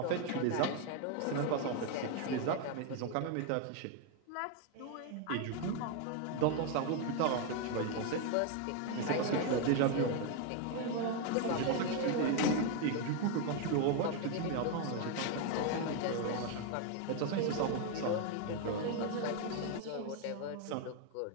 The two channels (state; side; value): different; both; correlation 0.01